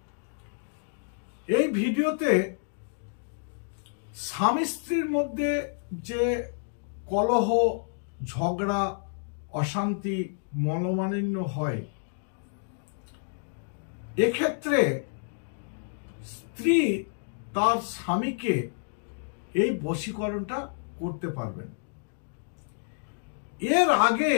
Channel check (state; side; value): silent; right; digital silence